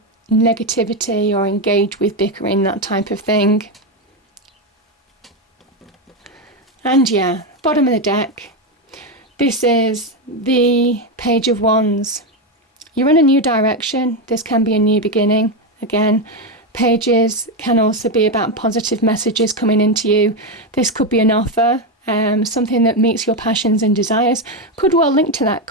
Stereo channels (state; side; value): normal; both; correlation 0.09